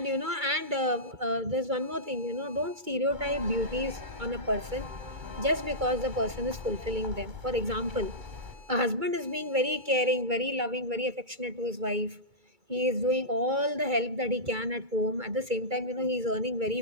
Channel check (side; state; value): left; late; 2.3 ms